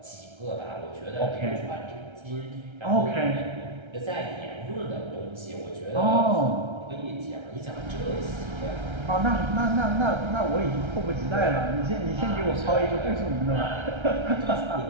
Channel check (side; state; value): left; late; 1.3 ms